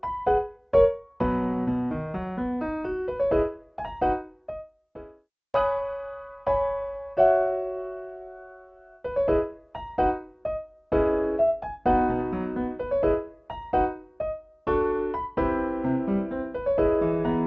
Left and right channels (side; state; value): both; identical; correlation 1.00